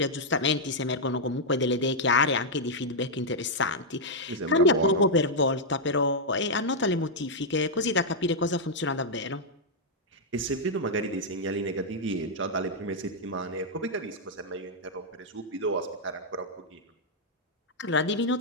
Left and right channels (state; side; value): normal; both; correlation -0.05